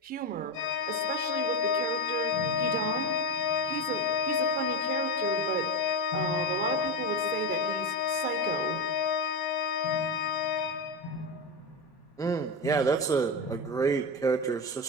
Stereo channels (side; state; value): both; normal; correlation 0.15